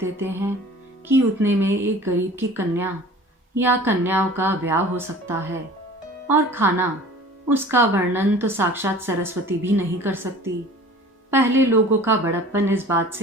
हैं कि उतने में एक गरीब की कन्या या कन्याओं का ब्याह हो सकता है। और खाना, उसका वर्णन तो साक्षात सरस्वती भी नहीं कर सकती। पहले लोगों का बड़प्पन इस बात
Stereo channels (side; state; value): both; normal; correlation 0.45